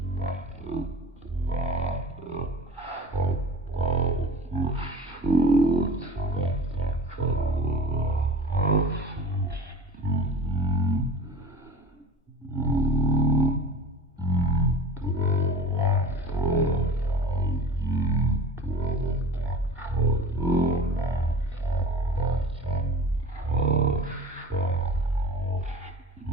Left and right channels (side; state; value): both; normal; correlation 0.39